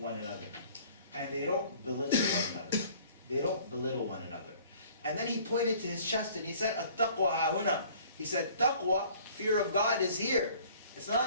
another. And they don't belittle one another. They don't belittle one another. And then he pointed to his chest and he said, التقوى ها هنا. He said, taqwa, fear of God, is here. It's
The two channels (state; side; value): inverted; both; correlation -0.52